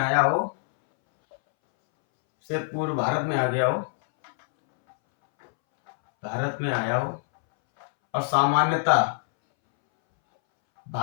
हो, भारत में आया हो, और सामान्यता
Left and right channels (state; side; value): silent; right; 62 dB below the other